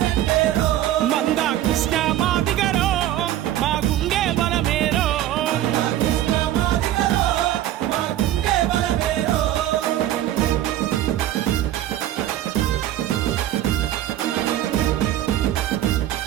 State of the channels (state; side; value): quieter; left; 12.9 dB